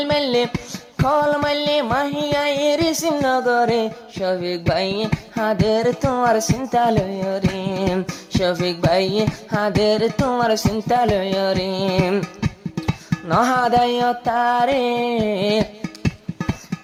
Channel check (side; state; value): both; identical; correlation 1.00